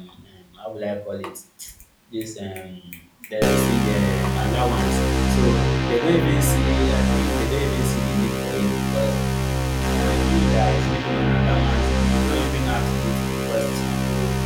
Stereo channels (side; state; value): both; identical; correlation 1.00